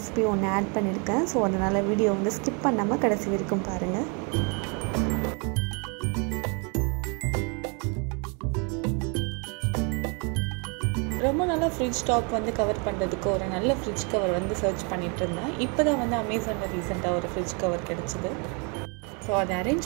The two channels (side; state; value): left; quieter; 34.6 dB